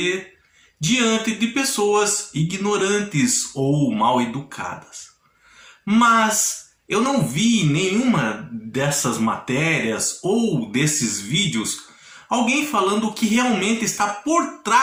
diante de pessoas ignorantes ou mal educadas. Mas eu não vi em nenhuma dessas matérias ou desses vídeos alguém falando o que realmente está por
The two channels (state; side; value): identical; both; correlation 1.00